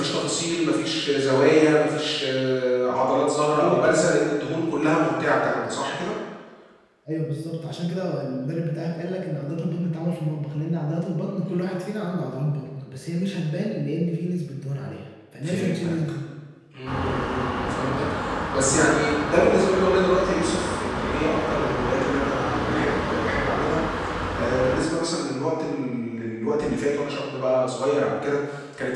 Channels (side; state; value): both; identical; correlation 1.00